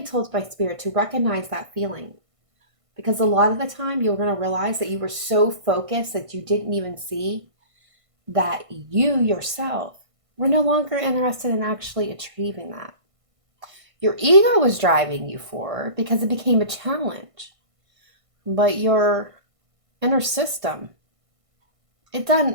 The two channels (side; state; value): left; late; 1.5 ms